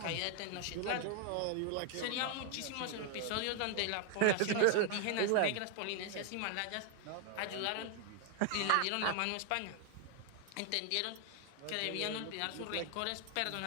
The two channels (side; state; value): both; different; correlation 0.00